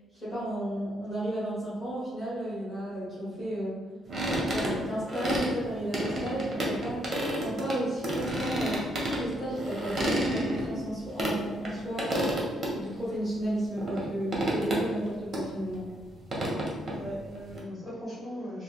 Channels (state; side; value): normal; both; correlation 0.74